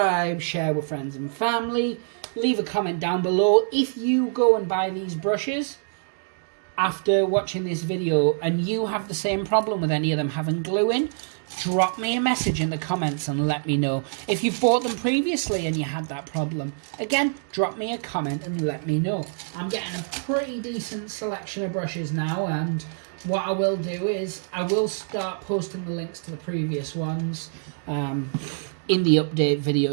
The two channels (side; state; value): left; silent; digital silence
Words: share with friends and family. Leave a comment down below if you go and buy these brushes after watching this video and you have the same problem with any of them having glue in. Drop me a message in the comments and let me know. If you've bought them previously and you had that problem, again, drop me a comment and let me know. I'm getting a pretty decent selection of brushes now, and what I will do is I will start posting the links to the previous ones in the update